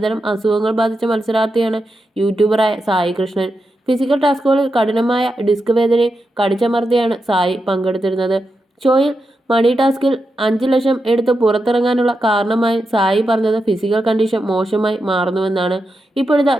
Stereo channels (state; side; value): normal; both; correlation 0.87